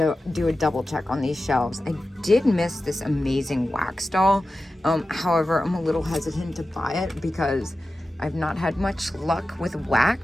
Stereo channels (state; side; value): normal; both; correlation 0.93